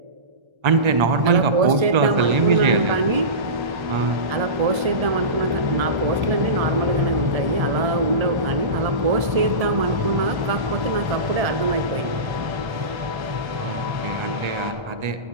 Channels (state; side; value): late; left; 1.3 ms